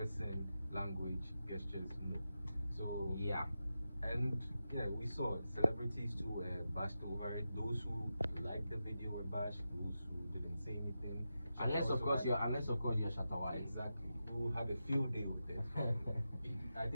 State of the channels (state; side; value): inverted; both; correlation -0.90